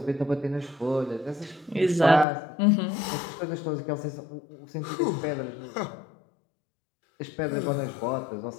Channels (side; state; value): right; drops out; at 2.2 s